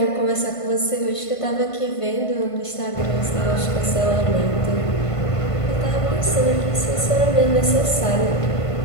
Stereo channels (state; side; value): late; right; 1.5 ms